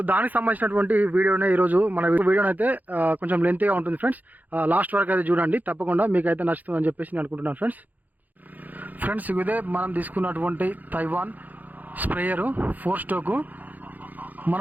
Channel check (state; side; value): late; left; 0.082 ms